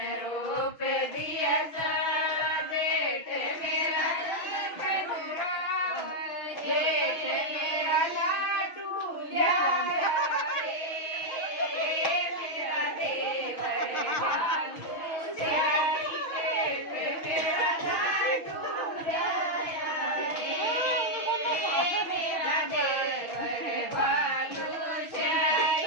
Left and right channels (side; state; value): right; late; 6.1 ms